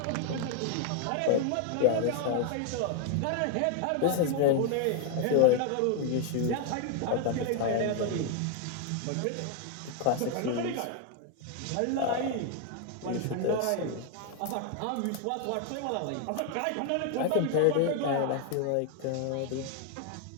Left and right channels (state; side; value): different; both; correlation 0.01